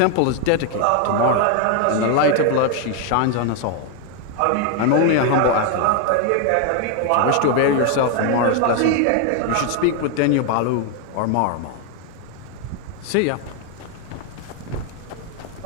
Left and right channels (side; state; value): both; different; correlation 0.01